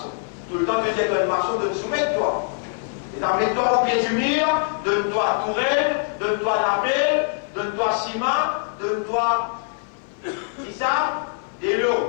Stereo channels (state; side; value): silent; right; 56 dB below the other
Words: Tout le temps que tu es un maçon, de te soumettre toi. Et mets-toi au pied du mur, donne-toi tourelle, donne-toi lapel, donne-toi ciment, donne-toi. C'est ça? Des